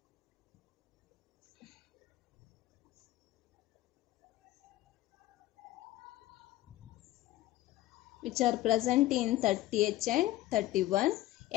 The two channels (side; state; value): right; quieter; 15.7 dB